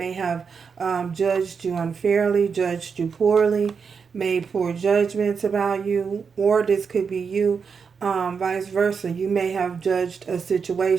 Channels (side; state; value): left; quieter; 5.9 dB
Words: have judged you unfairly, judged you poorly, made poor judgments about you, or this could be you. Vice versa, you may have judged a